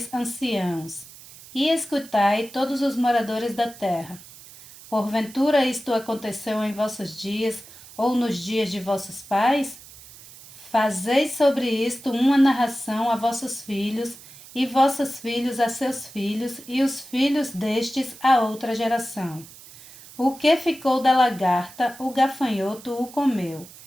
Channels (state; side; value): noise; right; hiss, 19 dB below the sound